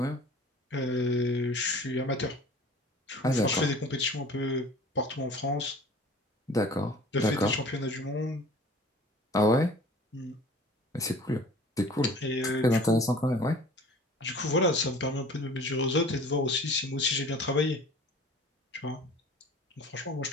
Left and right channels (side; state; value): both; normal; correlation 0.46